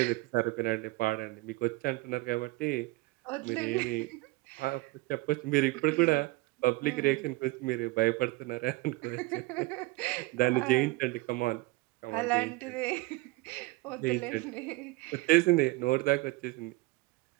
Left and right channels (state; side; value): quieter; left; 21.3 dB